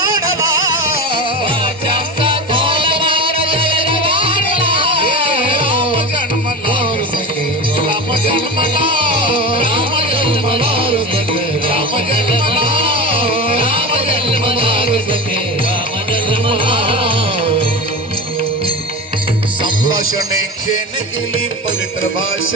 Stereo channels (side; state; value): both; normal; correlation 0.26